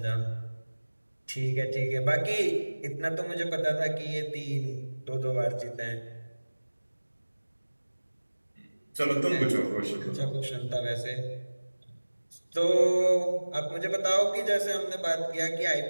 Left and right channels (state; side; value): inverted; both; correlation -1.00